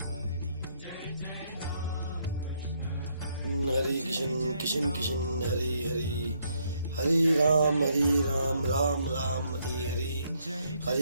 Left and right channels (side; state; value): both; inverted; correlation -0.72